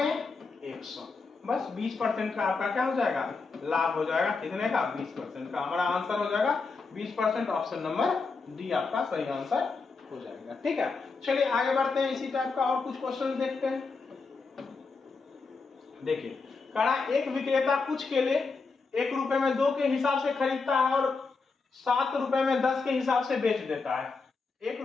100, बस 20% का आपका क्या हो जाएगा? लाभ हो जाएगा। कितने का? 20% का। हमारा आंसर हो जाएगा 20%। ऑप्शन नंबर डी आपका सही आंसर हो जाएगा, ठीक है? चलिए आगे बढ़ते हैं, इसी टाइप का और कुछ क्वेश्चन देखते हैं। देखिए कहा एक विक्रेता कुछ केले 1 रुपए में 2 के हिसाब से खरीदता है और 7 रुपए में 10 के हिसाब से बेच देता है। 1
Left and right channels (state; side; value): quieter; right; 4.4 dB